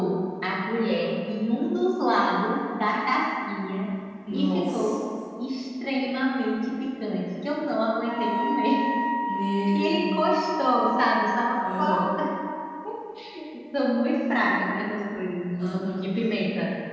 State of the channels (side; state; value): both; identical; correlation 1.00